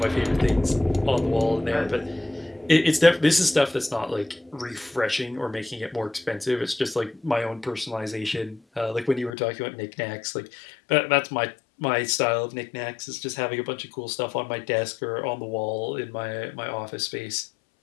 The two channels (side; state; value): right; drops out; at 9.3 s